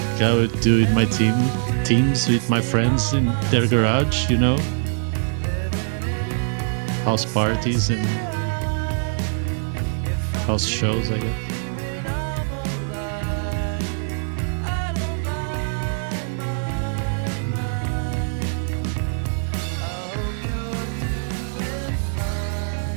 I would do in my teams with my friends in their garage, you know? House parties and house shows, I guess.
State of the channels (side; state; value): left; silent; digital silence